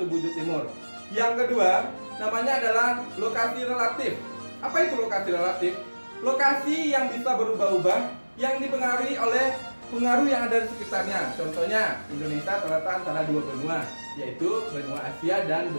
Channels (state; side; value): inverted; both; correlation -1.00